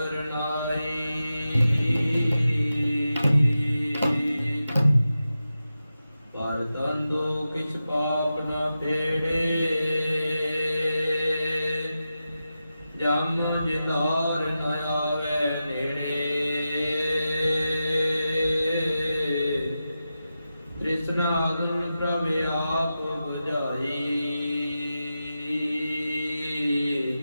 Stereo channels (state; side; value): inverted; both; correlation -0.91